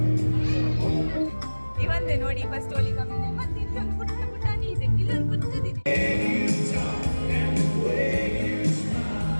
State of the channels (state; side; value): inverted; both; correlation -1.00